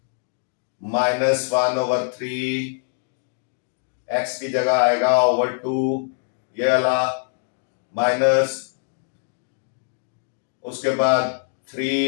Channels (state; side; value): silent; right; digital silence